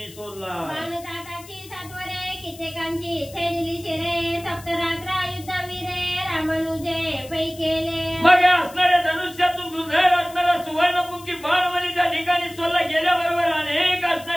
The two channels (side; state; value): left; noise; hiss, 19 dB below the sound